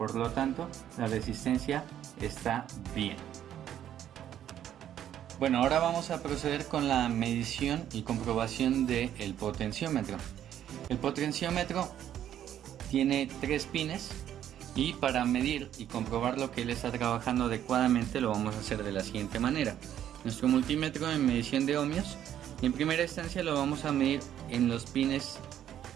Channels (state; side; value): quieter; left; 10.7 dB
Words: lo tanto, la resistencia está bien. Bueno, ahora vamos a proceder con la medición y comprobación del potenciómetro. El potenciómetro tiene 3 pines y para medir y comprobar lo que él está trabajando adecuadamente lo vamos a hacer de la siguiente manera. Nuestro multímetro en medición de ohmios, en primera instancia lo vamos a medir en los pines